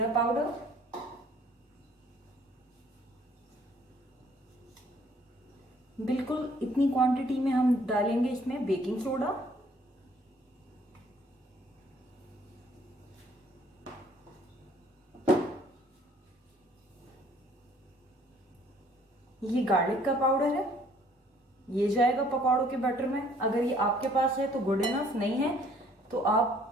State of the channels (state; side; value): normal; both; correlation 0.60